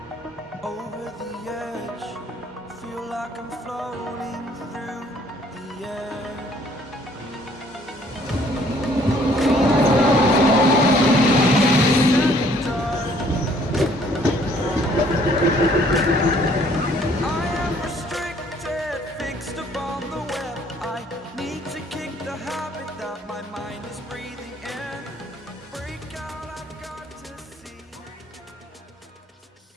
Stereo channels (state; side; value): normal; both; correlation 0.60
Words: Over the edge, feel like I'm floating through the air. I am restricted, fixed upon the web. I need to kick the habit that my mind is breathing in. Break out, I've got to see.